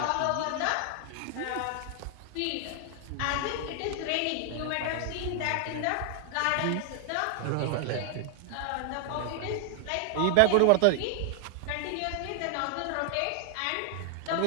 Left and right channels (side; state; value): both; different; correlation 0.00